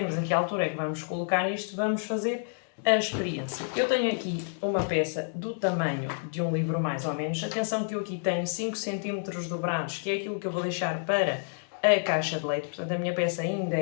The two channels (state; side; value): silent; right; digital silence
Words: a que altura é que vamos colocar isto, vamos fazer a experiência. Eu tenho aqui uma peça do tamanho de um livro mais ou menos, atenção que eu aqui tenho 5 cm dobrados, que é aquilo que eu vou deixar para a caixa de leite, portanto a minha peça ainda